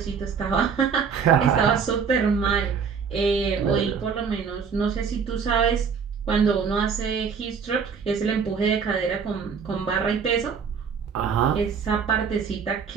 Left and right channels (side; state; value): left; quieter; 6.3 dB